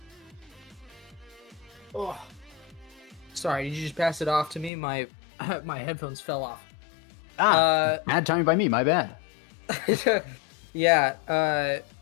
Oh, sorry, did you just pass it off to me? My my headphones fell off. bad timing by me, my bad. Yeah,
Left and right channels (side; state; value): right; drops out; at 4.7 s